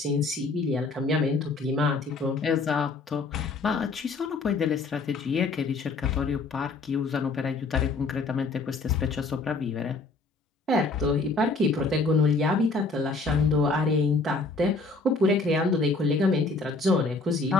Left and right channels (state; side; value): quieter; right; 3.7 dB